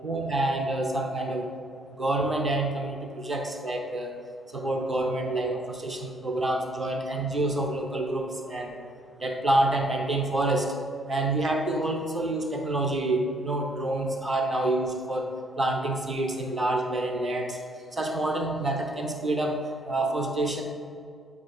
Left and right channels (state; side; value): normal; both; correlation 0.66